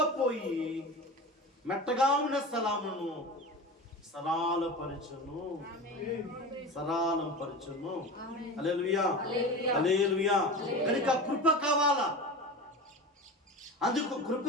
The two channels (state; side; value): normal; both; correlation 0.30